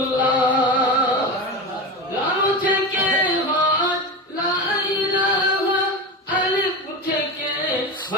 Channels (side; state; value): both; normal; correlation 0.23